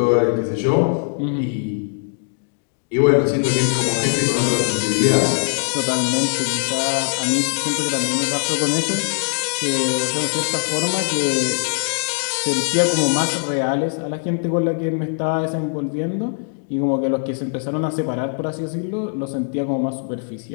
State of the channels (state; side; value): silent; right; 65 dB below the other